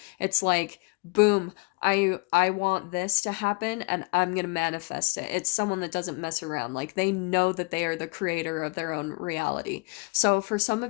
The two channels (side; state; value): right; quieter; 29.5 dB